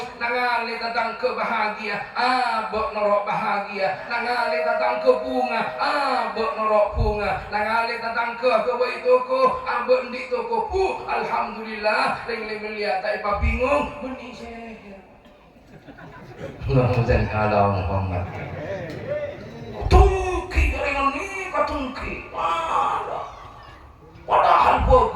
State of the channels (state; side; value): identical; both; correlation 1.00